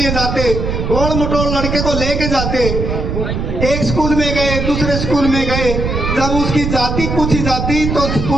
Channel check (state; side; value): noise; right; rumble, 2 dB below the sound